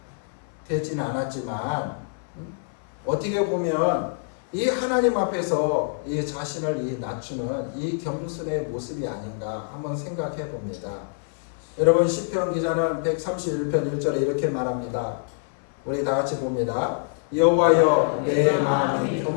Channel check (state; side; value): silent; right; 61 dB below the other